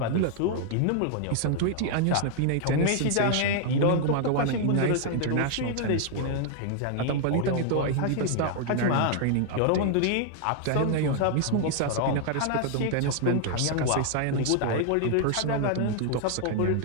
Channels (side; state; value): both; different; correlation 0.00